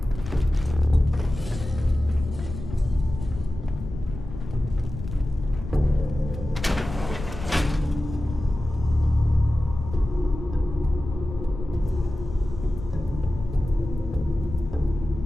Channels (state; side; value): noise; left; rumble, 10 dB below the sound